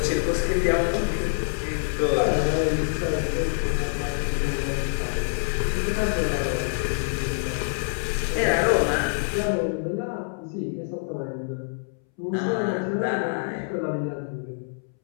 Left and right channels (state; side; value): silent; right; 61 dB below the other